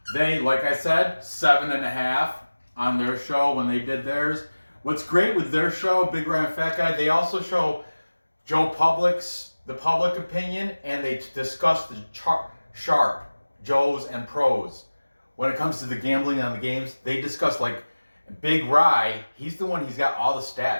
They, like I said, 7.5 on their show when they did theirs. What's great with their show, Big Ryan Fat Guy, they also show Joe Public's, the public opinion, and they discuss the sharp, Joes and pros. When it comes to the gambling on the games, they discuss like Big Rye, he's the one, he's got all the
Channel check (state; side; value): inverted; both; correlation -1.00